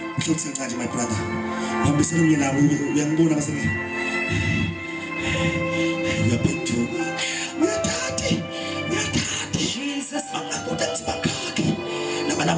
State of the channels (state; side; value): identical; both; correlation 1.00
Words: Uhlutsenza my brother. Hambisana umye nawe uyangibona basenge. Uyaphenduka. Uyathatha. Jesus. Bangakuda nti bakhake.